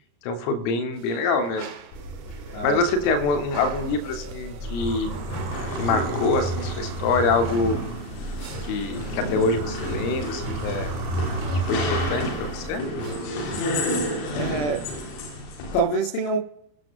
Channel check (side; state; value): right; late; 34 ms